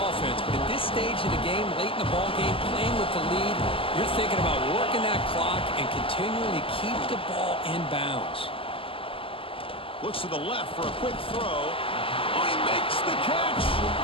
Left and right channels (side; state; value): right; late; 0.26 ms